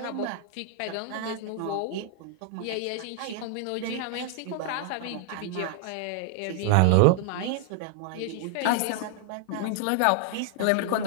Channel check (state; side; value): different; both; correlation 0.00